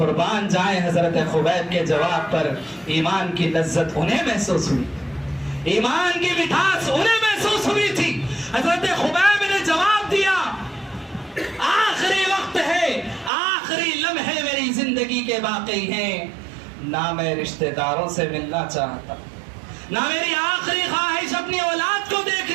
جائیں حضرت خبیب کے جواب پر ایمان کی لذت انہیں محسوس ہوئی, ایمان کی مٹھاس انہیں محسوس ہوئی تھی. حضرت خبیب نے جواب دیا, آخری وقت ہے, آخری لمحے میری زندگی کے باقی ہیں, نہ میں رشتہ داروں سے ملنا چاہتا, نہ میری آخری خواہش اپنی اولاد کو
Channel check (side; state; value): left; drops out; at 13.3 s